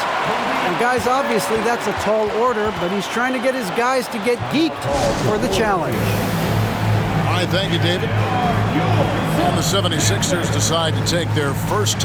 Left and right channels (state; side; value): identical; both; correlation 1.00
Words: And guys, obviously that's a tall order, but he's trying to get his guys to get geeked for the challenge. All right, thank you, David. And the 76ers decide to take their first